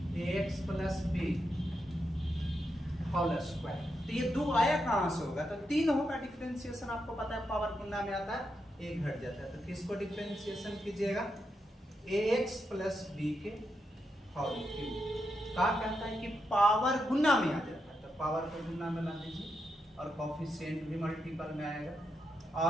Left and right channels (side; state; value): both; normal; correlation 0.84